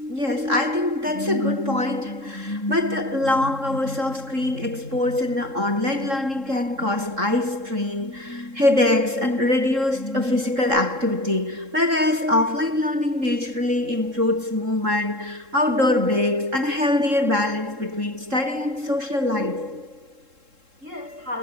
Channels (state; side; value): late; left; 3.7 ms